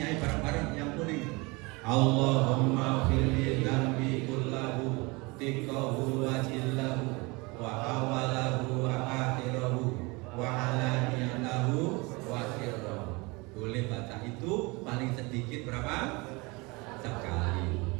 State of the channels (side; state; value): left; quieter; 25.9 dB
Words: bareng-bareng yang kuning. Allahumma firli dzambi kullahu tiqahu wa jillahu wa awalahu wa akhirahu wa alaniyatahu wa sirrahu. Boleh baca itu paling sedikit berapa? Sekali.